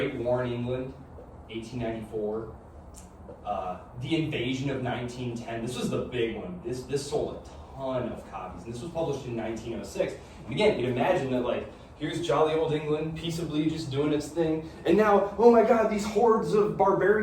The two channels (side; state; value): both; identical; correlation 1.00